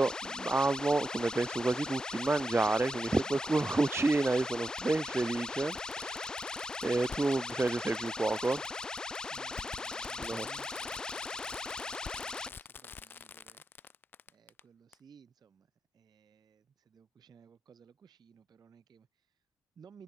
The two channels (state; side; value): normal; both; correlation 0.88